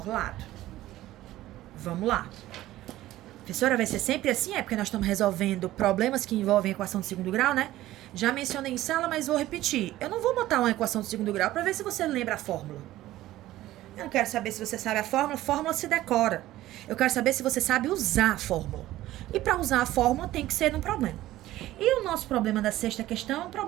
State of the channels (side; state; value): left; quieter; 15.3 dB